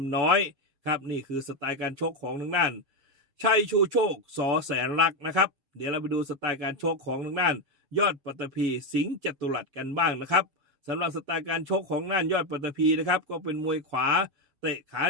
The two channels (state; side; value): late; left; 7.1 ms